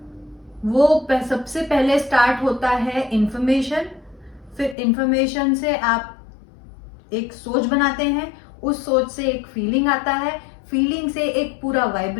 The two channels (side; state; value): right; drops out; at 4.8 s